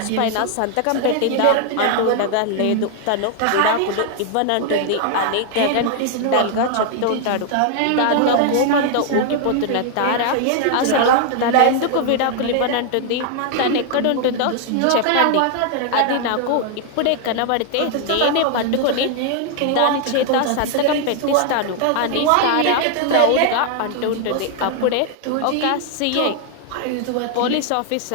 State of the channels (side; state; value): both; different; correlation 0.00